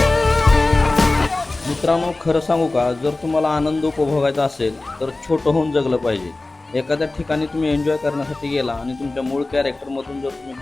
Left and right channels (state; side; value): quieter; right; 3.1 dB